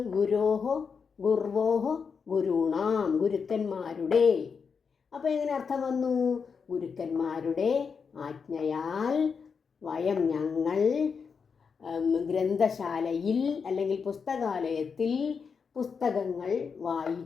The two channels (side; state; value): right; quieter; 5.8 dB